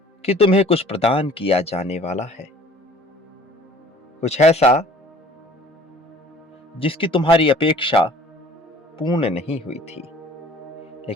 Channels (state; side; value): normal; both; correlation 0.51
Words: कि तुम्हें कुछ प्रदान किया जाने वाला है, कुछ ऐसा जिसकी तुम्हारी अपेक्षा पूर्ण नहीं हुई थी,